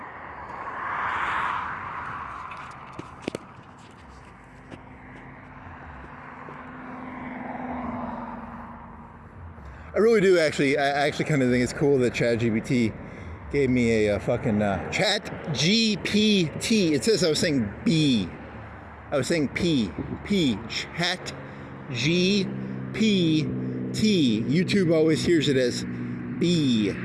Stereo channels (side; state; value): both; identical; correlation 1.00